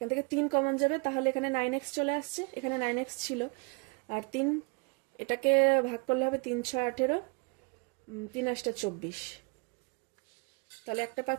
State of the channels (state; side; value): quieter; left; 33.2 dB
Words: থেকে 3 কমন যাবে, তাহলে এখানে 9x চলে আসছে, এখানে 9x ছিল, আর 3 এটাকে ভাগ করলে হবে 3 6 18, 3 8 24। তাহলে একটা